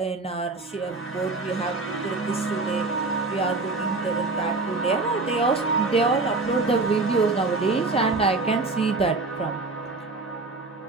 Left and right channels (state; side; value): quieter; left; 3.6 dB